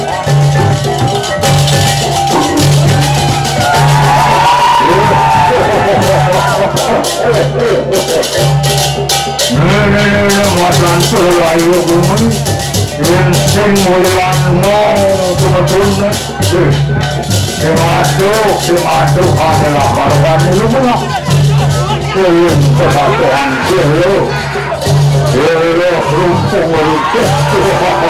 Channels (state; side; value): identical; both; correlation 1.00